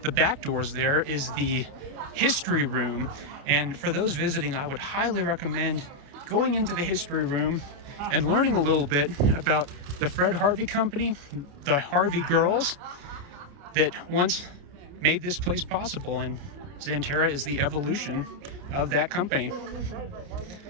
the back doors there is the history room. And for those visiting, I would highly recommend going into the history room and learning a little bit about the Fred Harvey Company, the Harvey girls that once made this place possible. And Xanterra is the evolution of that company.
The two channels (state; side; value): late; left; 28 ms